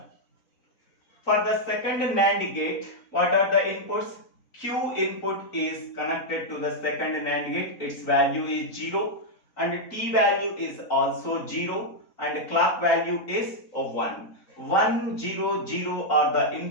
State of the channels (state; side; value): late; right; 3.9 ms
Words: For the second NAND gate, what are the inputs? Q input is connected to the second NAND gate. Its value is 0 and T value is also 0 and clock value is 1. 1, 0, 0 are the